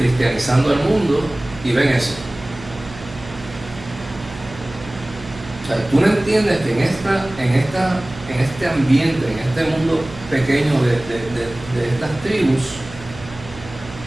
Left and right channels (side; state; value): right; noise; hum, 16 dB below the sound